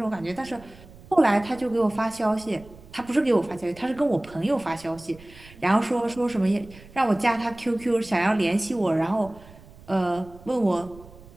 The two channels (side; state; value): right; noise; rumble, 21 dB below the sound